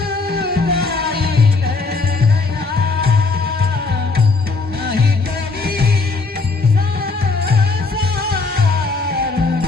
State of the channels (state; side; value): quieter; right; 3.9 dB